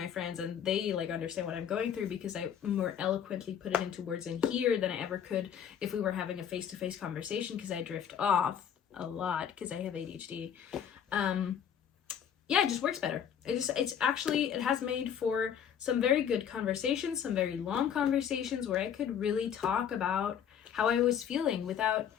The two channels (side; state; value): right; quieter; 8.6 dB